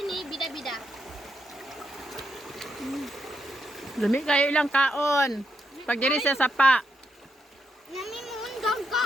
ni Bida-Bida. Lami kayo ilang kaon. Pag diri sa sapa. Nami mo undang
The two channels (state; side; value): normal; both; correlation 0.81